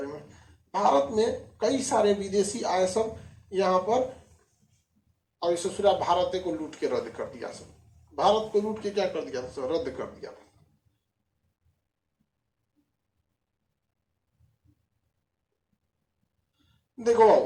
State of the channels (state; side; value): identical; both; correlation 1.00